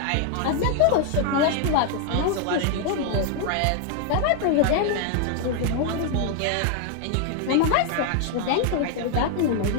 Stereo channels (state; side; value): different; both; correlation 0.00